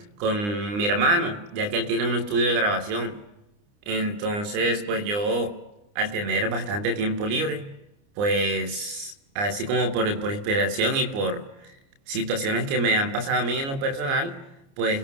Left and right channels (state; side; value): late; left; 29 ms